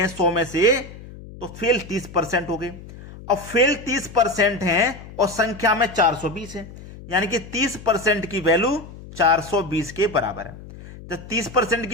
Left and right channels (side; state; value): left; noise; hum, 16 dB below the sound